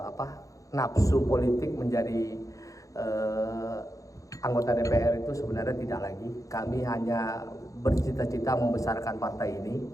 nafsu politik menjadi anggota DPR itu sebenarnya tidak lagi. Kami hanya bercita-cita membesarkan partai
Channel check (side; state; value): right; late; 0.16 ms